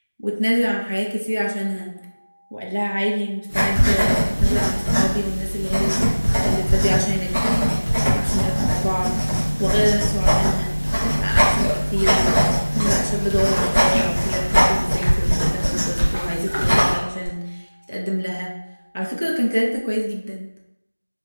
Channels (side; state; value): both; inverted; correlation -1.00